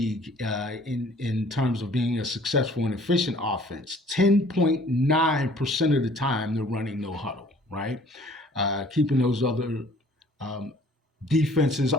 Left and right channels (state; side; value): normal; both; correlation 0.54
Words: in terms of being a successful and efficient offense. 10.9% of the time they're running no huddle, right? Keeping those other defenses